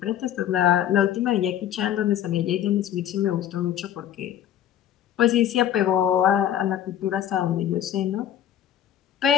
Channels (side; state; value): right; quieter; 10.6 dB